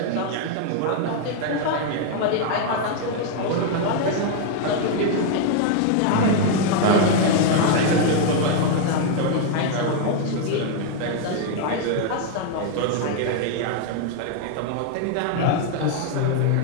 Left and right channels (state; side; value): different; both; correlation 0.00